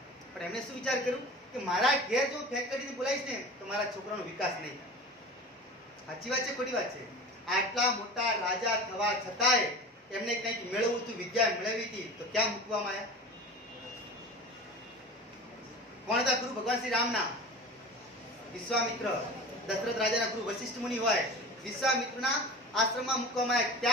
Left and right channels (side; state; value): both; normal; correlation 0.34